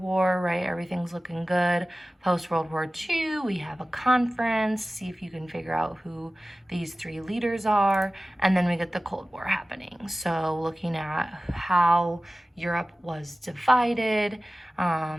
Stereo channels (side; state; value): both; normal; correlation 0.96